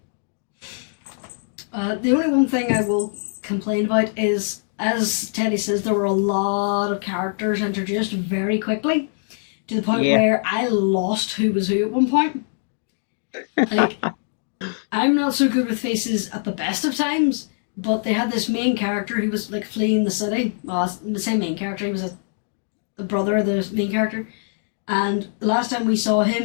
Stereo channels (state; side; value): silent; right; digital silence